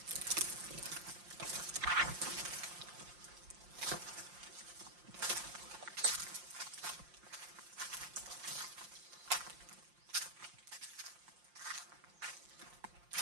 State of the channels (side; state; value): left; late; 5.7 ms